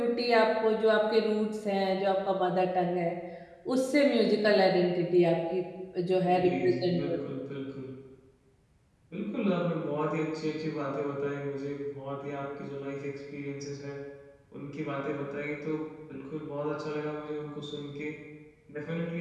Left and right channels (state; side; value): identical; both; correlation 1.00